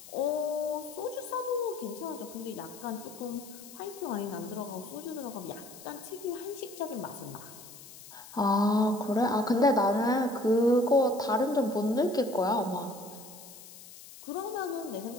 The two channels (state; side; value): noise; left; hiss, 17 dB below the sound